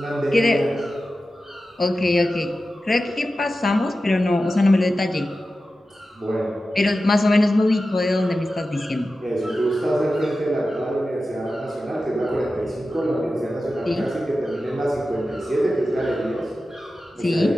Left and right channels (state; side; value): normal; both; correlation 0.93